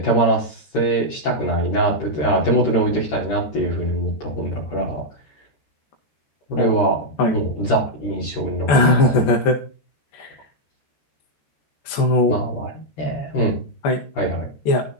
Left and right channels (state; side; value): late; right; 14 ms